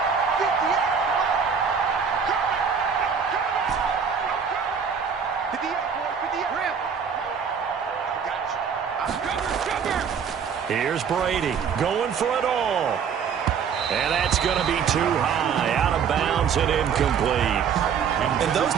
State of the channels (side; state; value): left; quieter; 6.8 dB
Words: Here's Brady going for it all. And that's going to be too high, out of bounds and incomplete. And those